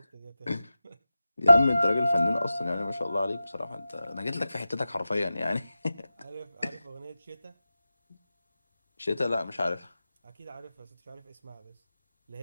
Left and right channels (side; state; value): both; inverted; correlation -0.94